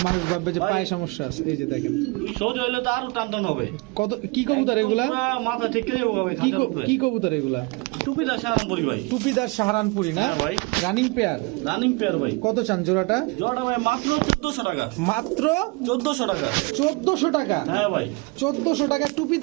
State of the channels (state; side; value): quieter; left; 26.8 dB